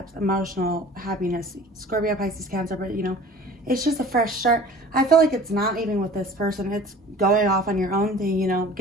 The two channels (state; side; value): normal; both; correlation 0.45